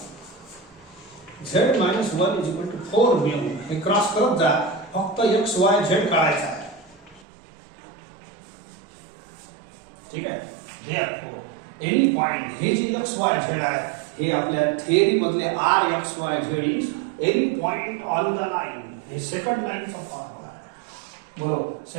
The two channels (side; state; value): left; drops out; at 7.2 s